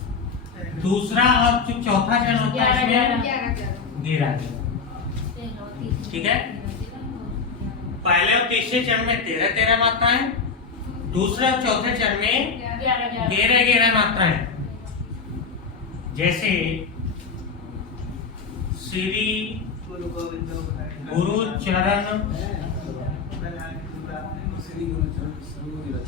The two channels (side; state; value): right; quieter; 5.1 dB